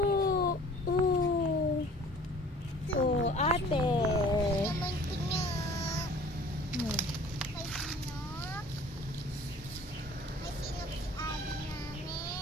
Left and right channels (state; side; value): normal; both; correlation 0.49